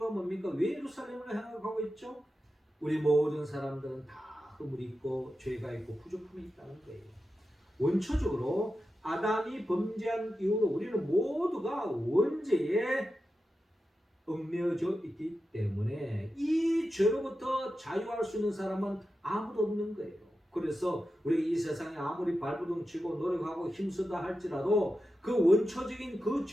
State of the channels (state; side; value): normal; both; correlation 0.91